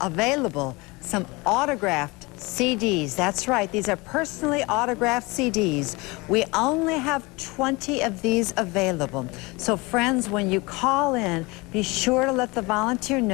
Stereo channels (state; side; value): quieter; right; 24.8 dB